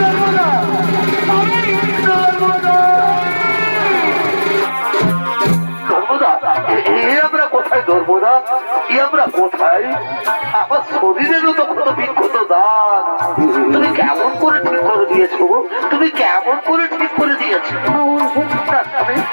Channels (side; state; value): both; inverted; correlation -1.00